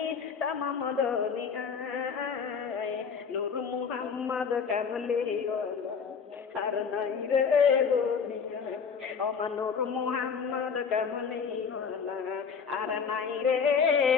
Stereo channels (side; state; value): right; quieter; 6.1 dB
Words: তামাম দুনিয়ায় নূর মুহাম্মদ কামলিওয়ালা আর নাই রে দুনিয়া ওমা নূর মুহাম্মদ কামলিওয়ালা আর নাই রে